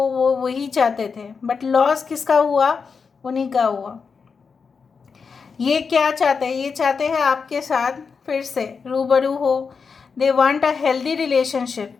वही चाहते थे। बट लॉस किसका हुआ? उन्हीं का हुआ। ये क्या चाहते हैं? ये चाहते हैं आपके साथ फिर से रूबरू हो। They want a healthy relationship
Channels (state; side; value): quieter; right; 5.4 dB